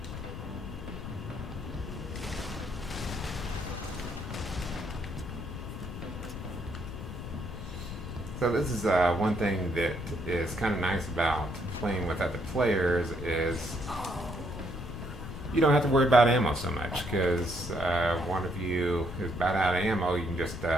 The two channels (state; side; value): noise; left; rumble, 8 dB below the sound